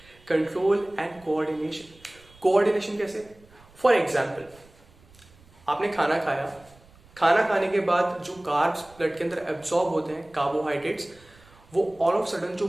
control and coordination. Coordination कैसे, फॉर एग्जाम्पल आपने खाना खाया, खाना खाने के बाद जो कार्ब्स ब्लड के अंदर एब्सॉर्ब होते हैं, कार्बोहाइड्रेट्स, वो ऑल ऑफ सडन जो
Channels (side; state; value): right; noise; rumble, 27 dB below the sound